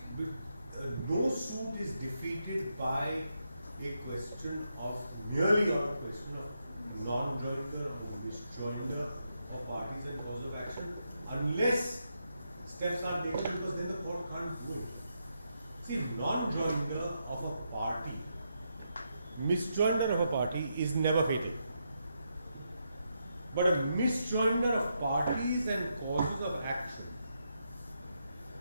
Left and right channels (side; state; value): both; inverted; correlation -0.82